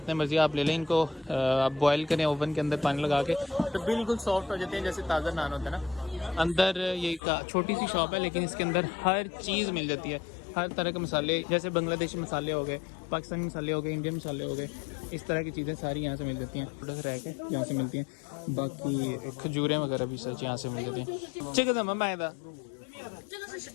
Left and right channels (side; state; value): right; drops out; at 7.2 s